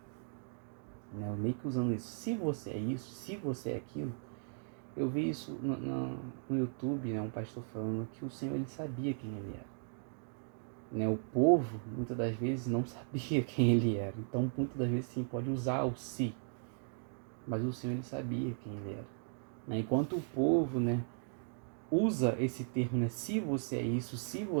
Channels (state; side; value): silent; left; 53 dB below the other